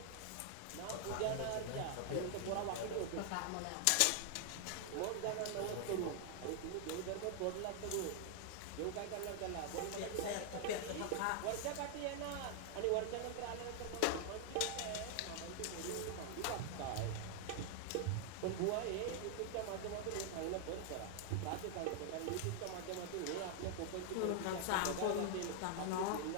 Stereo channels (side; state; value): both; different; correlation 0.00